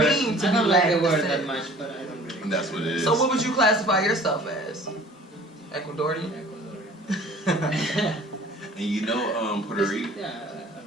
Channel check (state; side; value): normal; both; correlation 0.48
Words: mean to I be don't like Latin the word descent? that much, but I don't really. And that's what it is. So what would you classify yourself as? Ecuadorian? Ecuadorian. And you know, Puerto Rico. Yeah, I don't